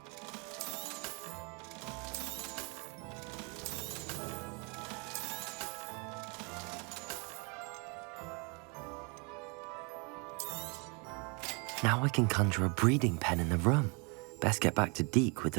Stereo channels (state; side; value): quieter; left; 32.9 dB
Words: Now I can conjure a breeding pen in the room. Best get back to Deke with